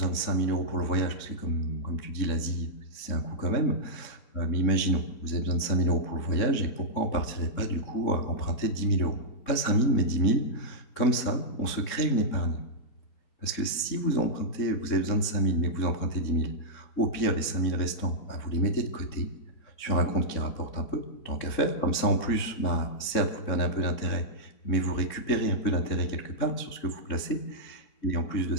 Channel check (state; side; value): late; right; 3.7 ms